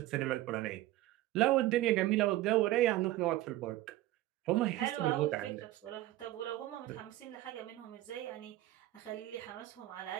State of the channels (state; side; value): quieter; left; 16.0 dB